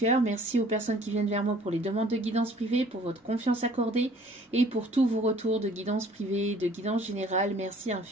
merci aux personnes qui viennent vers moi pour les demandes de guidance privée, pour votre confiance accordée et pour tous vos retours de guidance privée, de guidance générale. Merci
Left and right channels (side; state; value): both; normal; correlation 0.55